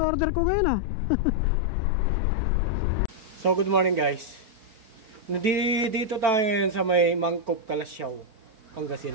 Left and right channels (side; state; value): left; late; 4.4 ms